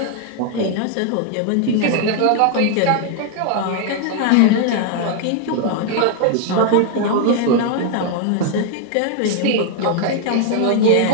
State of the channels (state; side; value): different; both; correlation 0.00